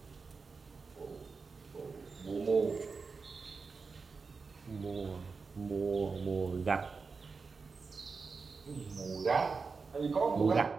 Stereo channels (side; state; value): left; quieter; 4.7 dB